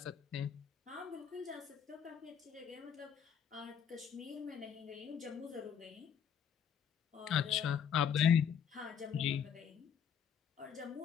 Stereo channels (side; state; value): right; quieter; 8.0 dB